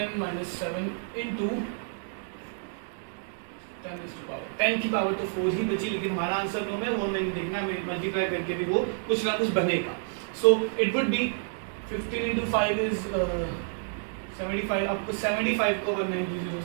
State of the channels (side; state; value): left; silent; digital silence